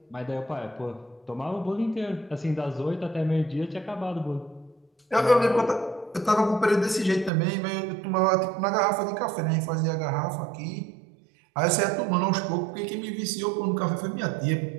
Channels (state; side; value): drops out; left; at 7.3 s